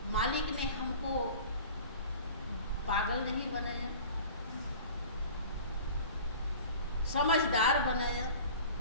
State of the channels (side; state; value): both; inverted; correlation -0.41